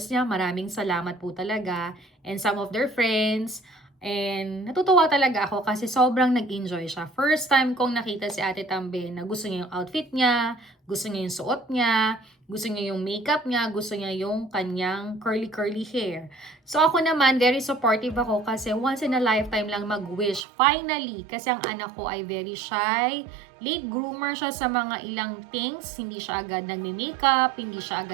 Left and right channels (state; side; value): drops out; left; at 20.4 s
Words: niya. Maraming salamat po talaga. And some of their friends. And natutuwa talaga ako kasi sobrang nag-enjoy siya. First time kong nakita si Ate Tambe na gusto niya yung outfit niya, gusto niya yung suot niya, gusto niya yung makeup niya, gusto niya yung kanyang curly hair. So ako naman, very supportive ako kasi once in a lifetime lang mag-wish. Finally, kasi ang anak ko ay very shy, late groomer siya sa mga ilang things, hindi siya agad nagme-makeup, hindi siya